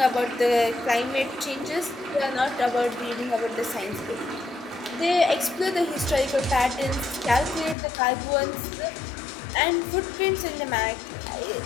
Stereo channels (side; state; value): right; drops out; at 7.8 s